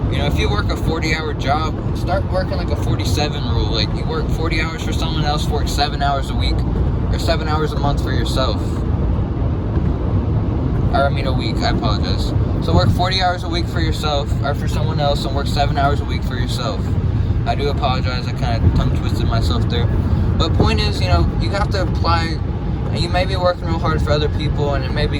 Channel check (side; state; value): both; identical; correlation 1.00